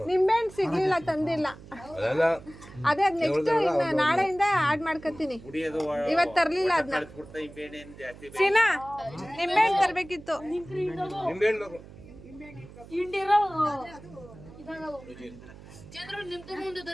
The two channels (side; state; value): right; noise; hum, 18 dB below the sound